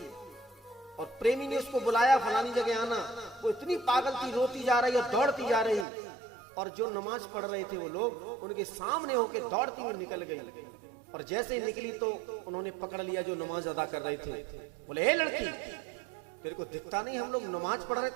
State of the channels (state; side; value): drops out; left; at 5.9 s